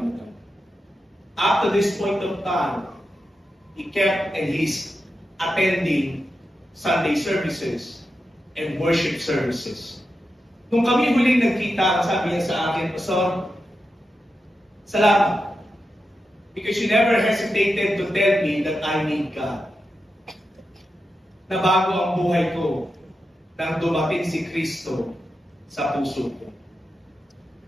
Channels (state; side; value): normal; both; correlation 0.89